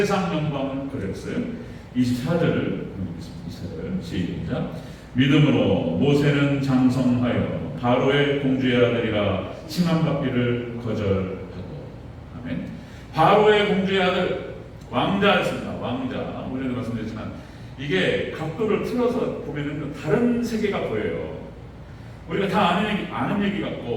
영광은 거절했어요. 24절을 읽겠습니다. 24절 시작. 믿음으로 모세는 장성하여 바로의 공주의 아들이라 칭함받기를 거절하고. 아멘. 바로의 공주의 아들, 왕자였습니다. 왕자. 오전에도 말씀드렸지만 이게 각도를 틀어서 보면은 다른 세계가 보여요. 우리가 다 아는 얘기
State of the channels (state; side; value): identical; both; correlation 1.00